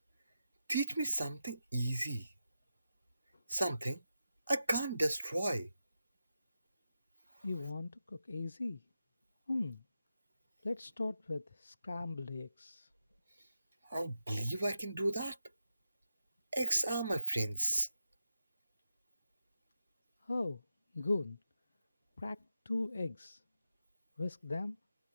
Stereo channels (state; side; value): inverted; both; correlation -0.88